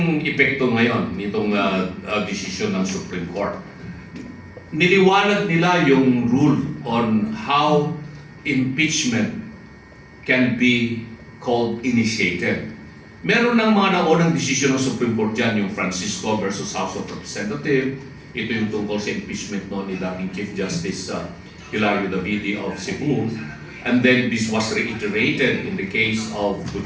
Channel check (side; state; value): both; identical; correlation 1.00